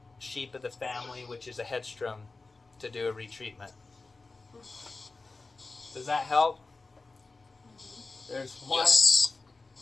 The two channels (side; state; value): right; quieter; 3.7 dB